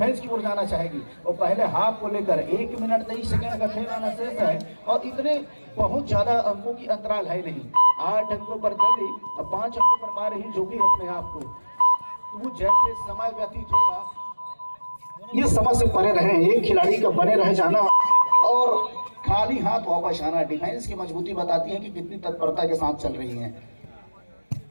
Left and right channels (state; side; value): inverted; both; correlation -1.00